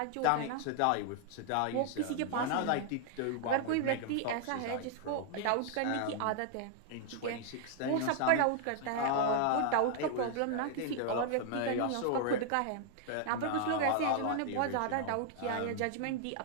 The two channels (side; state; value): both; different; correlation -0.01